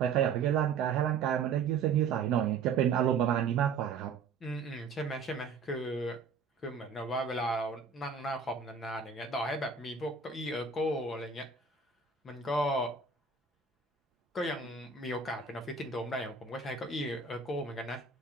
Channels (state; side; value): quieter; left; 5.3 dB